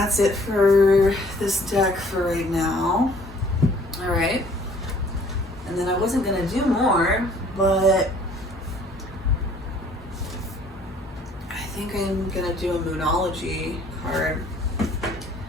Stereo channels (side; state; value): both; normal; correlation 0.57